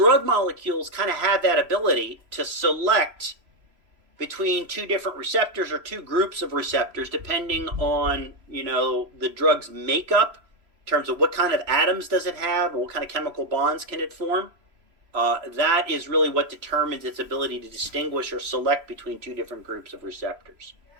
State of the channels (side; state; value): left; late; 3.0 ms